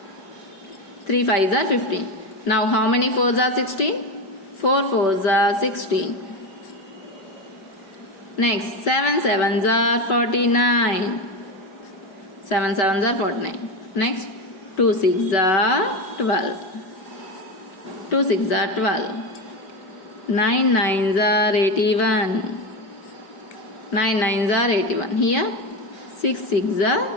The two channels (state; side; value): late; right; 5.2 ms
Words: 3 5s are 15. Now, how many 4s are 16? 4 4s are 16. Next, 7 7s are 49. 7 7s are 49. Next, 2 6s are 12. 2 6s are 12. 9 9s are 81. 9 9s are 81. Here 6 6s are